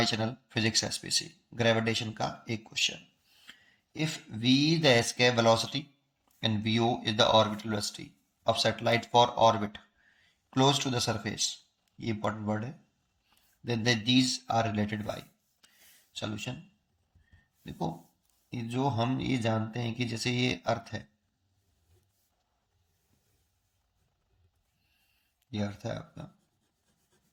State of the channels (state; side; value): identical; both; correlation 1.00